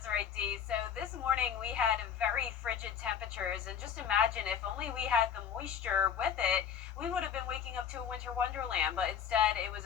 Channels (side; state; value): right; quieter; 8.2 dB